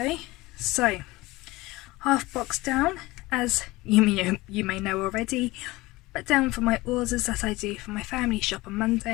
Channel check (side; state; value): right; quieter; 20.5 dB